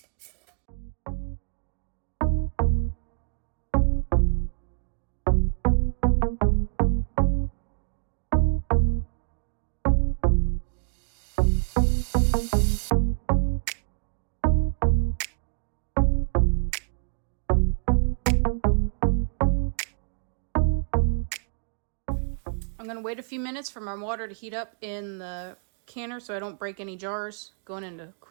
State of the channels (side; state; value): left; silent; digital silence